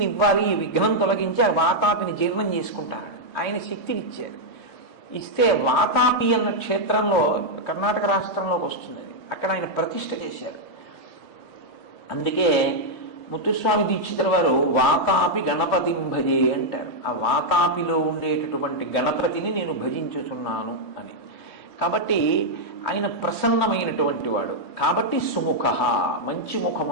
ఇవ్వాలి, ఈ విఘ్నం తొలగించి ఆ వాతాపిని జీర్ణం చేసుకుంటాను. ఆయన శక్తిని ఇచ్చారు. ఇస్తే వాతాపి అన్న క్షేత్రంలో కర్ణాటక రాష్ట్రంలోకి వస్తుంది. అక్కడ ఆయన ప్రతిష్ఠ చేశారు. అందుకే ముత్తుస్వామి దీక్షితుల వారు వాతాపి గణపతిం భజే అంటారు. ఆ వాతాపిలో ఉండేటటువంటి గణపతిని నేను భజించుతున్నాను అని. కాబట్టి ఆయన ప్రసన్నమైనటువంటి వాడు. కాబట్టి సుముఖ, మంచి ముఖం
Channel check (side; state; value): right; late; 2.8 ms